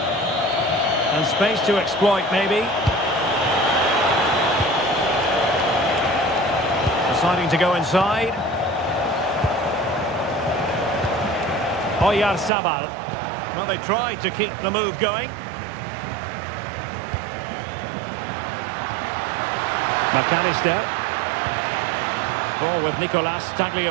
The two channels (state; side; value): drops out; left; at 12.5 s